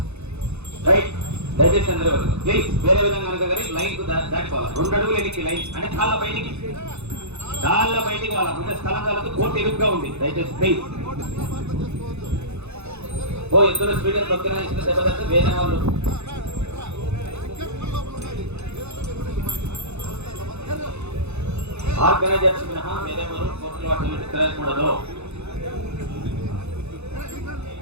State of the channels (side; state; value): left; late; 0.81 ms